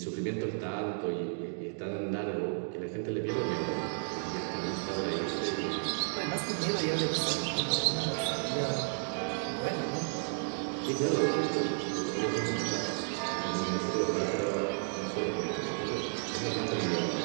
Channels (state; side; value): silent; left; digital silence